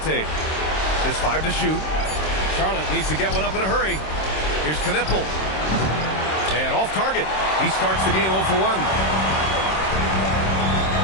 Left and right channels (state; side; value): late; right; 26 ms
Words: Just 5 to shoot. Charlotte needs to get one up in a hurry. Here's Knipple. And off target. He starts the game 0 for 1.